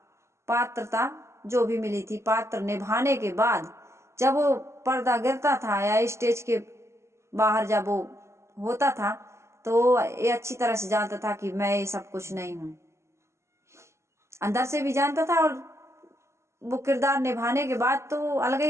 पात्रता जो भी मिली थी, पात्र निभाने के बाद जब वो पर्दा गिरता था या स्टेज के बाहर जब वो होता था, तो ये अच्छी तरह से जानता था कि मैं ये सब कुछ नहीं हूं। अंदर से भी जानता था, और वो किरदार निभाने के बाद तो अलग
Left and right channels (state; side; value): late; left; 0.13 ms